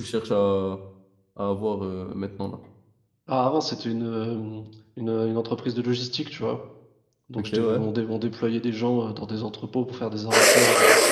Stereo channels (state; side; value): identical; both; correlation 1.00